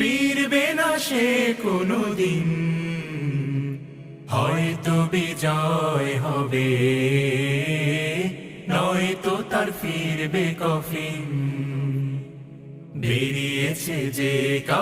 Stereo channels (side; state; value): both; identical; correlation 1.00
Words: না সে কোনো দিন। হয়তো বিজয় হবে, নয়তো তার ফিরবে কফিন। বেরিয়েছে যে